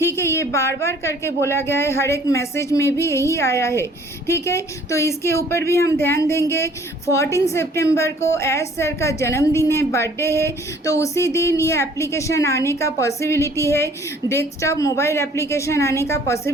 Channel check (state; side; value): normal; both; correlation 0.56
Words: है। ये बार बार करके बोला गया है, हर एक मैसेज में भी यही आया है, ठीक है। तो इसके ऊपर भी हम ध्यान देंगे। 14 सितंबर को एस सर का जन्मदिन है, बर्थडे है, तो उसी दिन ये एप्लीकेशन आने का पॉसिबिलिटी है, डेस्कटॉप मोबाइल एप्लीकेशन आने का